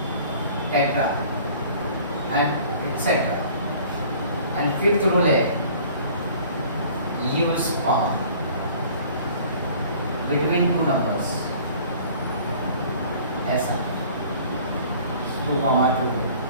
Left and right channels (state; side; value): inverted; both; correlation -0.50